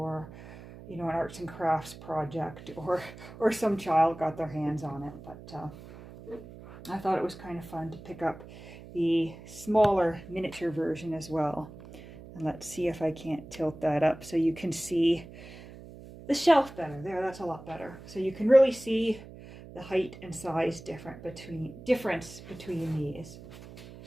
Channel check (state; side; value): noise; right; hum, 16 dB below the sound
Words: you know, an arts and crafts project, or some child got their hands on it. But I thought it was kind of fun to pick up the smaller miniature version as well. And let's see if I can't tilt that up so you can see the shelf better. There, that's a lot better. So you can really see the height and size difference between these.